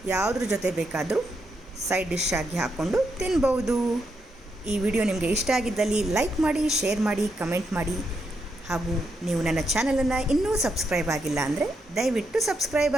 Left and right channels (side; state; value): both; normal; correlation 0.81